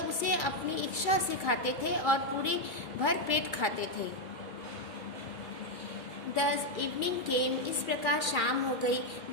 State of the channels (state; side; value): late; right; 2.3 ms